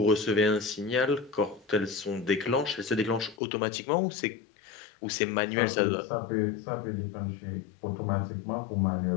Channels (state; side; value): drops out; right; at 3.4 s